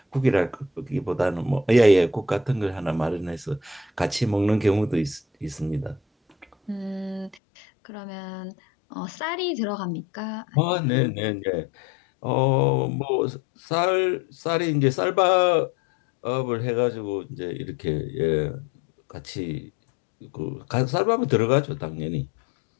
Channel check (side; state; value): right; drops out; at 7.4 s